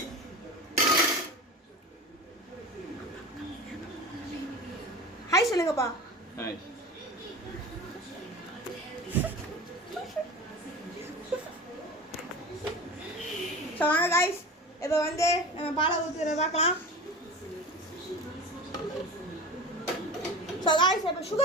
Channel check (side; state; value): both; normal; correlation 0.32